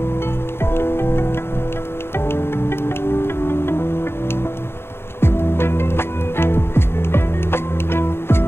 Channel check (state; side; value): late; right; 0.11 ms